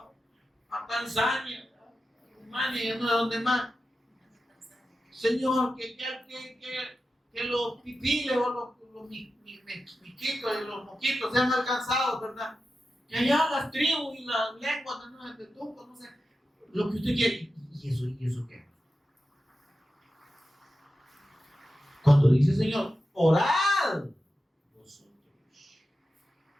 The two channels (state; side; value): normal; both; correlation 0.91